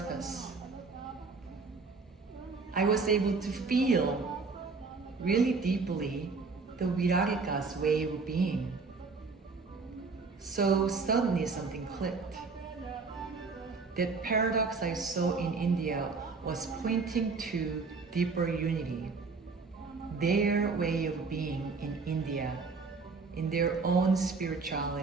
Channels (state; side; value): quieter; left; 4.4 dB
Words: I was able to feel really deeply the Wirikutta's way of being. So suddenly something clicked. That paradox I saw in India was pointing to deeper unity, their way of being in India, in their own